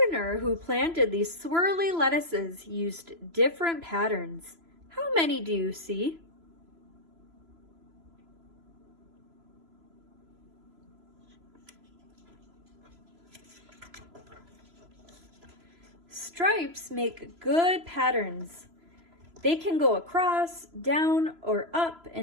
who planted these swirly lettuces used different patterns. How many do you see? Stripes make good patterns. They can go across, down, or up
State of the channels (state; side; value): late; left; 3.0 ms